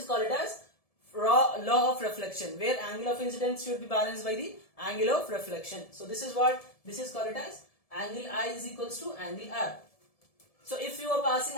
called it as law of reflection, where angle of incidence should be balanced by the angle of reflection. So this is what, this is called it as angle I is equals to angle R. So if you are passing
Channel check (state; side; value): late; right; 1.7 ms